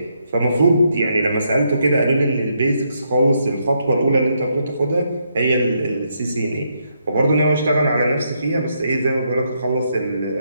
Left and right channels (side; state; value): both; inverted; correlation -0.77